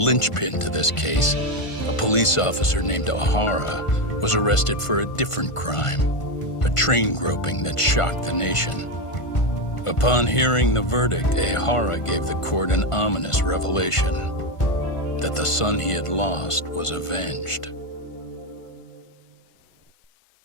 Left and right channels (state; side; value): late; right; 1.5 ms